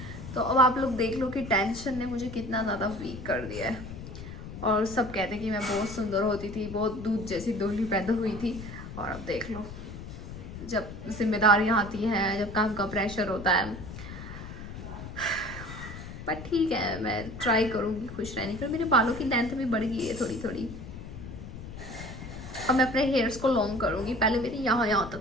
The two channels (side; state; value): left; noise; rumble, 11 dB below the sound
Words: तो अब आप लोग देख लो कि टेंशन ने मुझे कितना ज़्यादा वीक कर दिया है। और सब कहते हैं कि मैं बहुत सुंदर होती थी, बहुत दूध जैसी दोहली पैदा हुई थी, और अब देख लो जब जिम्मेदारियाँ आती हैं, जब काम का प्रेशर होता है। बट ठीक है, मैं ट्राई करूँगी खुश रहने की। मेरे बालों की लेंथ भी बढ़ गई है थोड़ी थोड़ी। अब मैं अपने हेयर्स को लॉन्ग करूँगी। पहले मेरे यहाँ